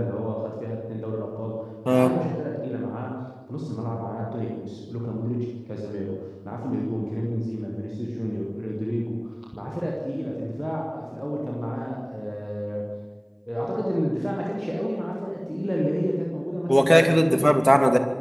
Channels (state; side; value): identical; both; correlation 1.00